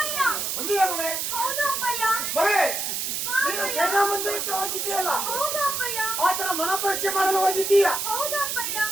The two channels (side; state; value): right; noise; hiss, 2 dB below the sound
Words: ಒಂದಿಗೆ ಮಗಳೇ, ಮಗಳೇ, ನೀನು ಸೇನಾ ಮಂದಿರಕ್ಕೆ ಹೋಗಿದ್ದೀಯಲ್ಲ, ಆತರ ಮನ ಪರೀಕ್ಷೆ ಮಾಡಲು ಹೋಗಿದ್ದೀಯಾ?